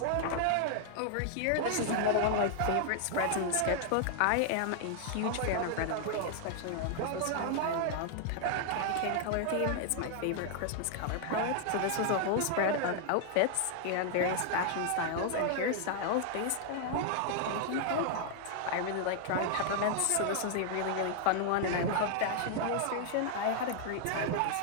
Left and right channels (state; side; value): different; both; correlation 0.00